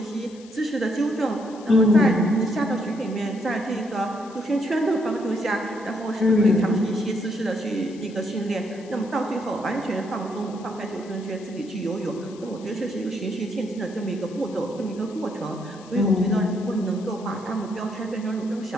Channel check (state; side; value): noise; left; hiss, 23 dB below the sound